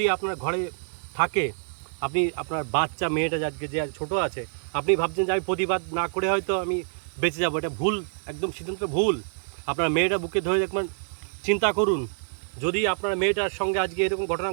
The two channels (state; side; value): silent; left; digital silence